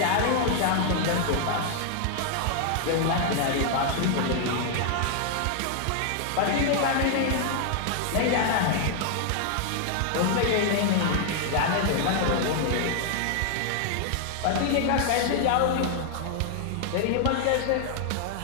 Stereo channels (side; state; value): both; different; correlation 0.00